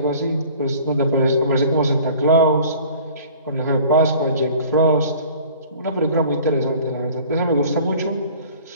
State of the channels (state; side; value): inverted; both; correlation -0.47